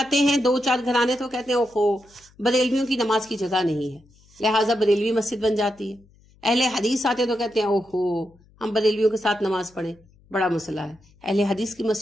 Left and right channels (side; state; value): left; noise; hum, 29 dB below the sound